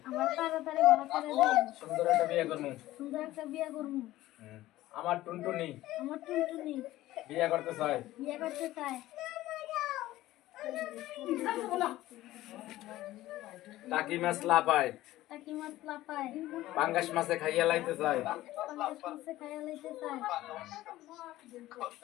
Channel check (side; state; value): right; quieter; 15.9 dB